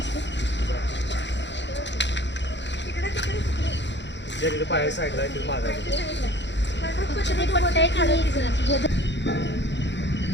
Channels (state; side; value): late; right; 0.52 ms